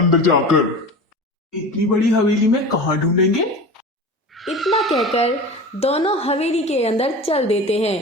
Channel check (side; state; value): both; normal; correlation 0.33